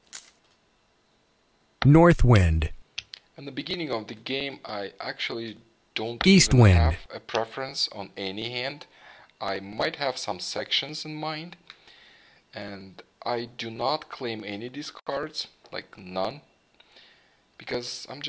North wind. In the beginning of the game, I actually don't East even wind. have a preference on any hand. I might have some sections in mind, and I do not claim any discards, like none, because I'm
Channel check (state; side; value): identical; both; correlation 1.00